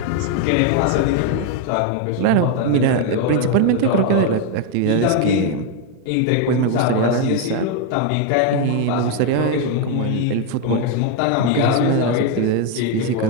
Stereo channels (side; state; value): both; different; correlation 0.01